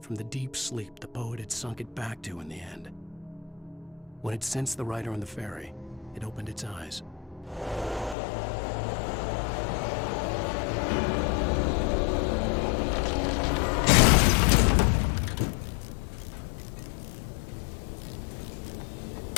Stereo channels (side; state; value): right; drops out; at 8.2 s